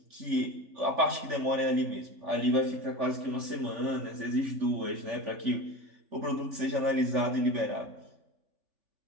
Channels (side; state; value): left; late; 3.4 ms